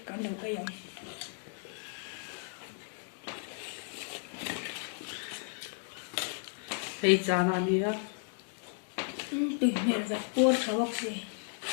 kan lo ai yong. Hey chana nia. Tui mer za por thawak se.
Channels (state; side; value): silent; right; 55 dB below the other